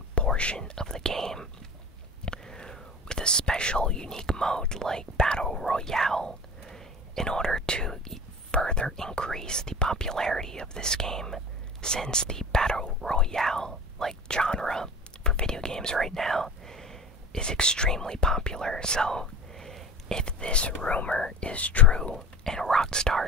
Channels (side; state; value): both; normal; correlation 0.36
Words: portion of the game with a special unique mode like Battle Royale in order to further increase the popularity of this game, since the Battle Royale genre for video games right now is extremely popular. So if this rumor is true and